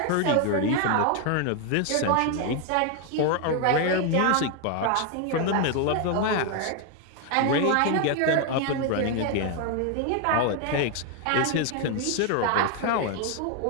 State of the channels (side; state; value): both; different; correlation 0.01